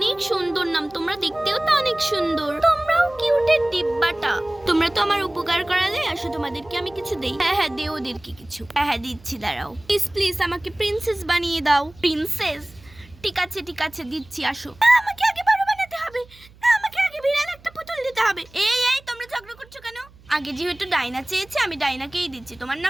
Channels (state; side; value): noise; right; hum, 25 dB below the sound